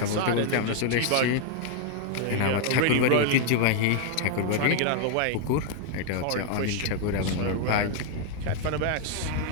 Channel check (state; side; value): different; both; correlation 0.00